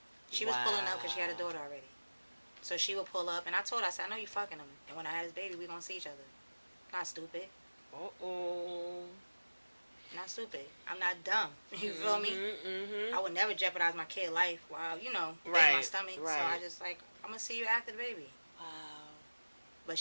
She was pulling up because she had a daughter already. So she would pull up, and I told her, I said, I know you fucking him. And when I had this baby, we going to see each other. Not stupid. Uh-oh. Not stupid. I'm not dumb. You feel me? I would never jeopardize my kid's life while, you know, in my stomach. So I just like, I'm going to see you after the baby. Wow. But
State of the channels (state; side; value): inverted; both; correlation -1.00